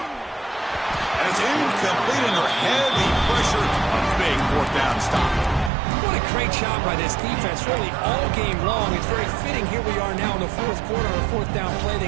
it's incomplete under heavy pressure. A big 4th down stop. What a great job by this defense, really all game long. It's very fitting. Here we are now in the 4th quarter, a 4th down play.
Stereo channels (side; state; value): left; drops out; at 5.7 s